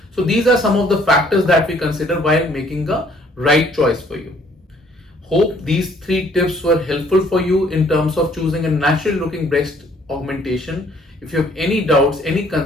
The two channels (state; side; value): normal; both; correlation 0.61